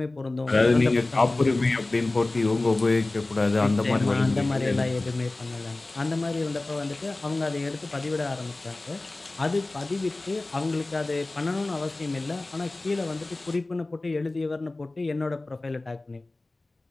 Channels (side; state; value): right; quieter; 3.0 dB